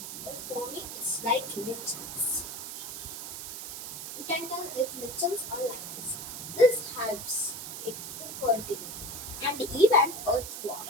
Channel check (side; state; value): right; noise; hiss, 7 dB below the sound